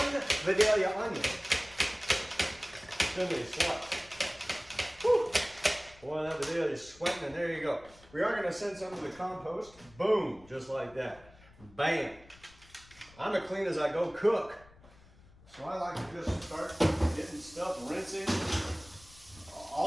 Vidalia onion. Thinly sliced. Whew. Boy, that Vidalia is sweating, and there you go. We are going to send some to the compost. Boom, just like that. Bam. I'm as clean as I go cook. So I like to just start getting stuff rinsing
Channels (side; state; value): left; noise; rumble, 24 dB below the sound